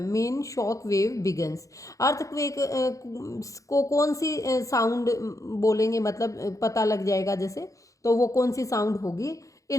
shock wave begins. Earthquake को कौन सी साउंड बोलेंगे, मतलब पता लग जाएगा जैसे, तो वो कौन सी साउंड होगी?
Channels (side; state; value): right; late; 0.16 ms